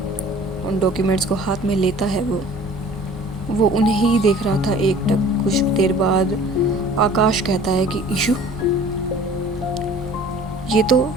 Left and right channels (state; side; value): noise; right; rumble, 22 dB below the sound